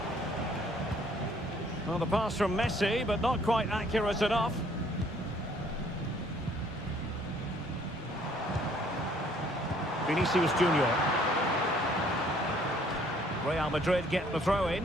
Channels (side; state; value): both; normal; correlation 0.61